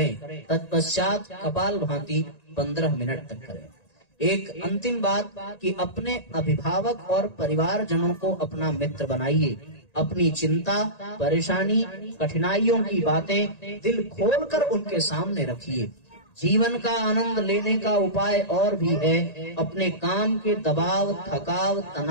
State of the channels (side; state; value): right; late; 1.9 ms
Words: तत्पश्चात कपाल भांति 15 मिनट तक करें। एक अंतिम बात कि अपने अभिभावक और परिवारजनों को अपना मित्र बनाइए। अपनी चिंता, परेशानी, कठिनाइयों की बातें दिल खोलकर उनके सामने रखिए। जीवन का आनंद लेने का उपाय और भी है। अपने काम के दबाव, थकाव,